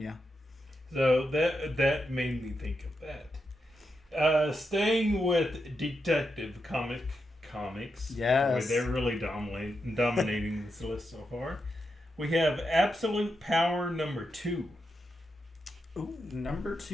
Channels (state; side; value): normal; both; correlation 0.85